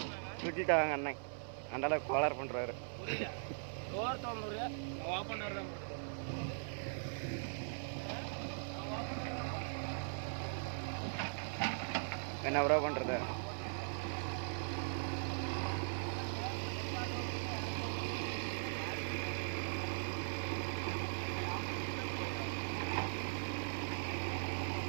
சுட்டிட்டாங்க அண்ணன், அந்த அளவுக்கு கோளாறு பண்ணுறாரு. என்ன ப்ரோ பண்ணுறது?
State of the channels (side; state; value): left; silent; 51 dB below the other